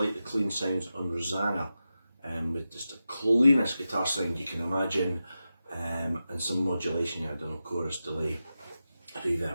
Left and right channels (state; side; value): inverted; both; correlation -0.91